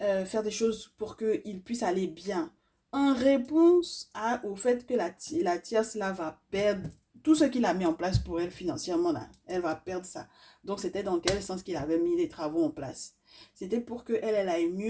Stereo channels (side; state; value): both; identical; correlation 1.00